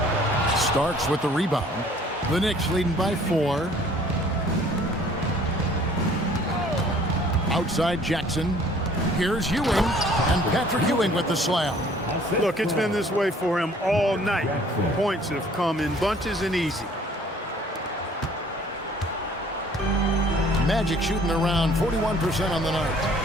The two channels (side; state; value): both; normal; correlation 0.55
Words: Starks with the rebound. The Knicks leading by 4. Outside Jackson. Here's Ewing. And Patrick Ewing with the slam. Look, it's been this way for him all night. Points have come in bunches and easy. Magic shooting around 41% on the